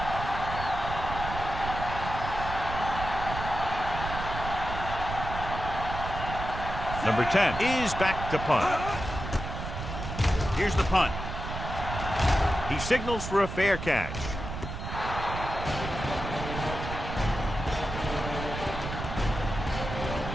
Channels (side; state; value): right; noise; rumble, 6 dB below the sound